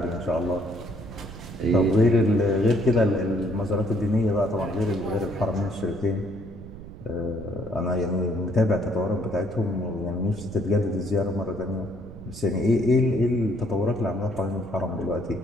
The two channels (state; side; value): noise; right; rumble, 14 dB below the sound